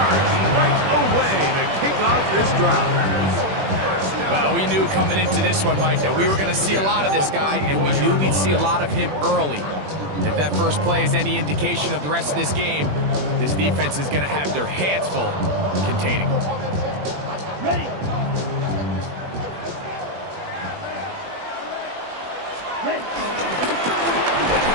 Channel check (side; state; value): left; late; 21 ms